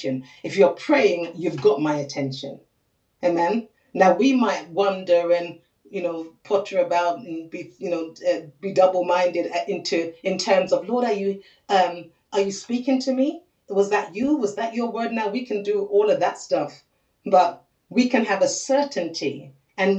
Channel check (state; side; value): identical; both; correlation 1.00